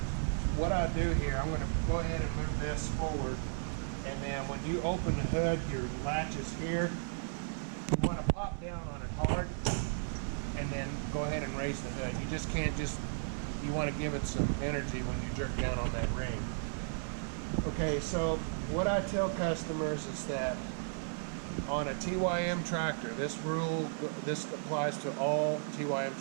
what I'll do here, I'm going to go ahead and move this forward, and then when you open the hood, your latch is here. You want to pop down on it hard and then go ahead and raise the hood. You just can't you want to give it some energy when you jerk down on that ring. Okay, so what I tell customers is that on a TYM tractor, this applies to all TYM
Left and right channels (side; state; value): left; silent; 55 dB below the other